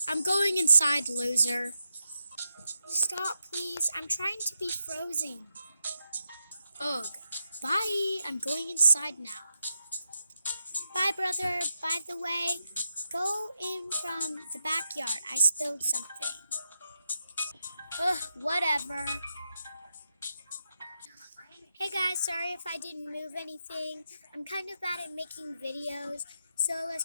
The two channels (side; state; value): both; inverted; correlation -0.86